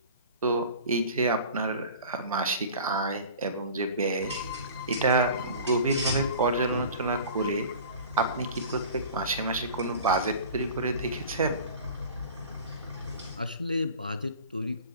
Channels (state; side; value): inverted; both; correlation -0.40